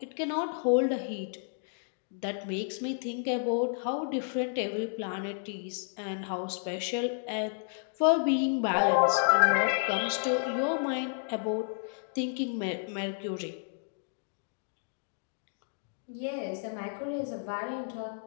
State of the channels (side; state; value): right; silent; digital silence